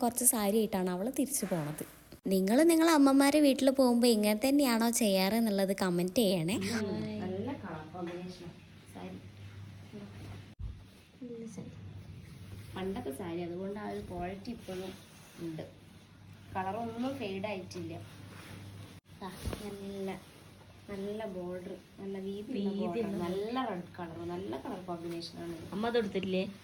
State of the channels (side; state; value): both; identical; correlation 1.00